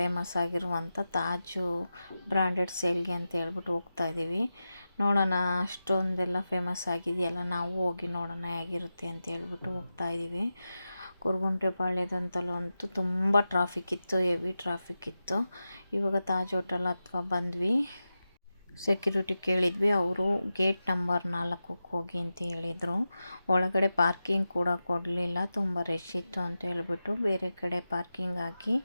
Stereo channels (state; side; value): inverted; both; correlation -0.92